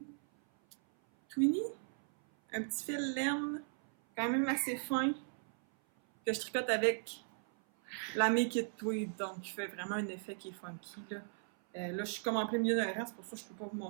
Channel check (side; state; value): left; silent; 53 dB below the other